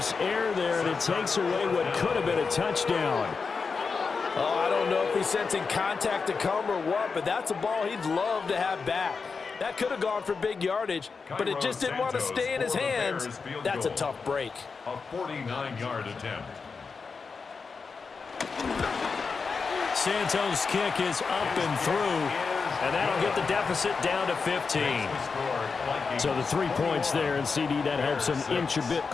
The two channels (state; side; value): quieter; right; 4.9 dB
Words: error there, and it takes away what could have been a touchdown. Oh, I don't know if he's sensing contact to come or what, but that's a ball he'd love to have back. That could have gone for big yardage, but it just didn't want to stay in his hands. That's a tough break. A 49-yard attempt. Santos' kick is up and through, and that'll get the deficit down to 15. So the 3 points there, and CD, that helps him inch a bit